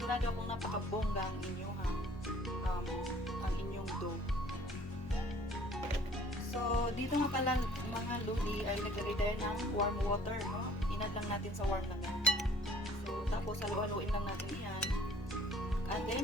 akong napakabongga ang inyong ang inyong dough. So, dito nga pala mga luli ay naglagay tayo ng warm water, no? Inad lang natin sa warm lang yan. So, tapos halu-haluin lang natin yan. And then,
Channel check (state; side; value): normal; both; correlation 0.55